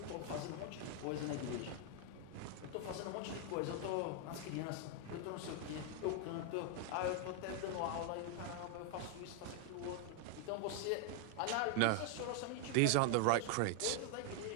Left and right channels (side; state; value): both; different; correlation 0.00